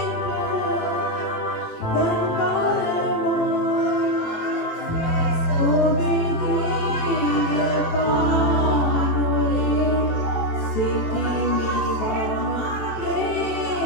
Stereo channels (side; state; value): right; late; 18 ms